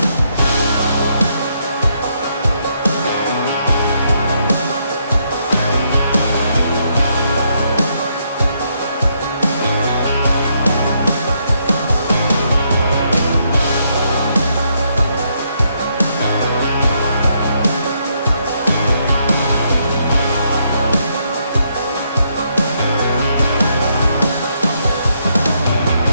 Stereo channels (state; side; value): inverted; both; correlation -0.75